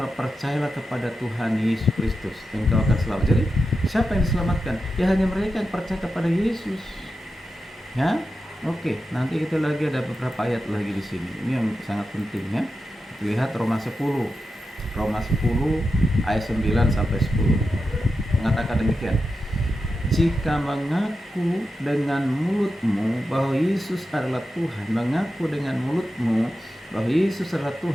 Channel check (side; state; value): both; normal; correlation 0.90